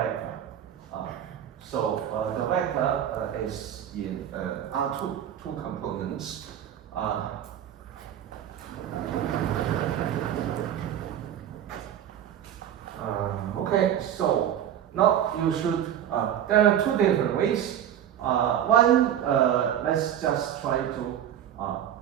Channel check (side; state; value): left; quieter; 10.3 dB